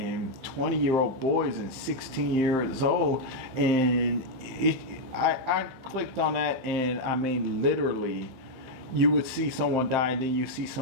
20-year-old boys and 16 years old, and I clicked on that, and I mean, literally, you would see someone die, and then you see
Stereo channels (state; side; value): late; left; 15 ms